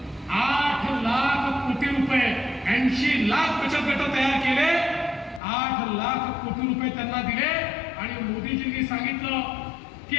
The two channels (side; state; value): right; drops out; at 5.4 s